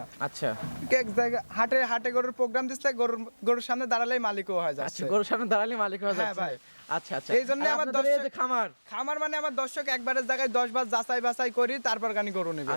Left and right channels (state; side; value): inverted; both; correlation -1.00